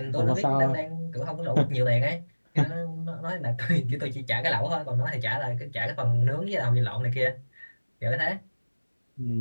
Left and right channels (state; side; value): inverted; both; correlation -1.00